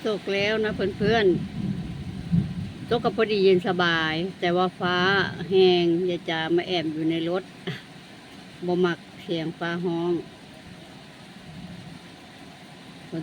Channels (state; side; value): identical; both; correlation 1.00